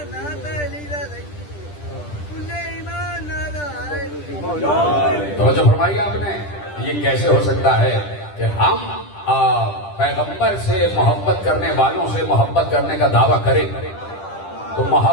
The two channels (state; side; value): late; right; 10 ms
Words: توجہ فرمائی آپ نے؟ یہ کیسے ہو سکتا ہے کہ ہم پیغمبر سے محبت کرنے والوں سے محبت کرنے کا دعویٰ کریں؟ تو